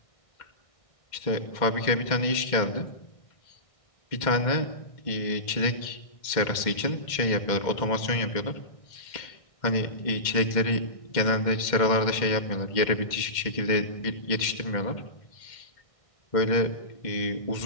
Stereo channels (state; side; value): late; right; 2.1 ms